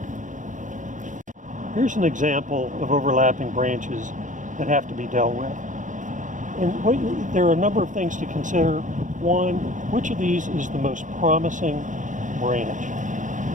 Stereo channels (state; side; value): late; left; 0.37 ms